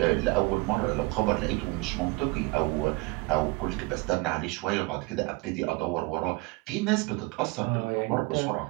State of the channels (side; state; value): left; quieter; 24.7 dB